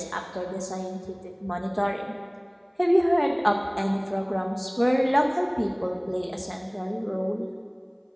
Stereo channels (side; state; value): both; identical; correlation 1.00